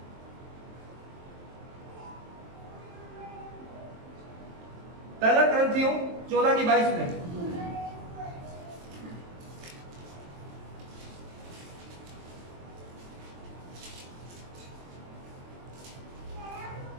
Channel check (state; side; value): late; left; 23 ms